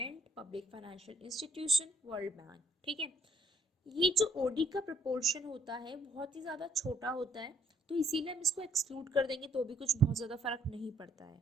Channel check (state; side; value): normal; both; correlation 0.65